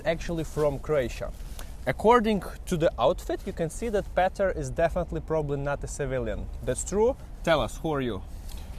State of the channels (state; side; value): identical; both; correlation 1.00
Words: actually from Croatia. According to the outfit, you can see that Petar is definitely probably not a civilian. That's true? Tell us, who are you?